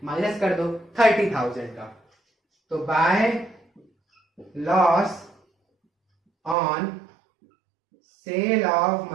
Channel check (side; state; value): left; drops out; at 6.6 s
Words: माइनस कर दो 30,000 का। तो by loss on sale of